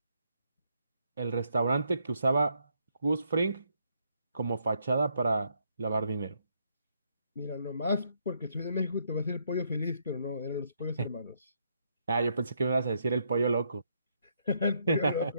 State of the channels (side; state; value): both; inverted; correlation -0.74